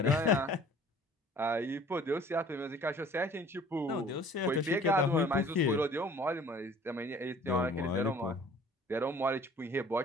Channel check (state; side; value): normal; both; correlation 0.50